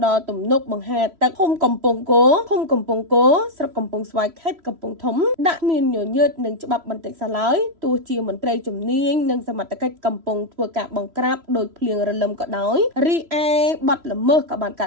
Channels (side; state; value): left; late; 3.0 ms